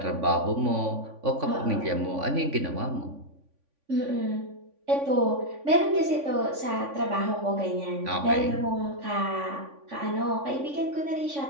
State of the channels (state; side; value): late; left; 3.5 ms